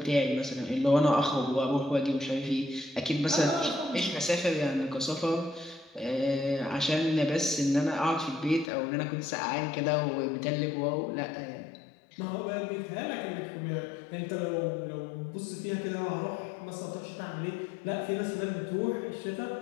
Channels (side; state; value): right; drops out; at 8.7 s